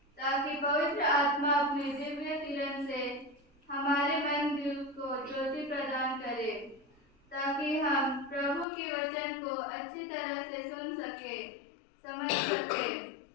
ताकि पवित्र आत्मा अपने दिव्य किरण से हमारे मन दिल को ज्योति प्रदान करे, ताकि हम प्रभु के वचन को अच्छी तरह से सुन सके, समझ सके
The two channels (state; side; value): drops out; right; at 8.7 s